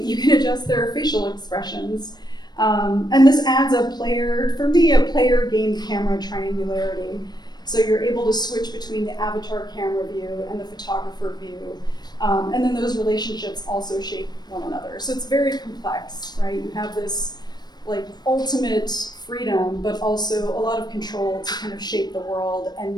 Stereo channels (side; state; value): right; late; 0.20 ms